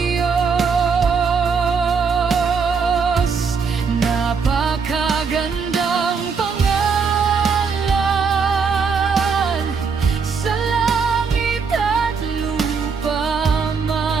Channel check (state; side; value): quieter; left; 5.5 dB